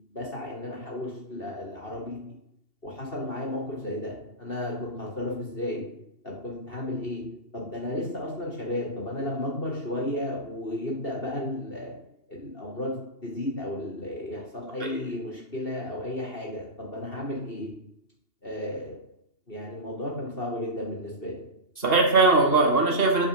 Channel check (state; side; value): late; right; 2.8 ms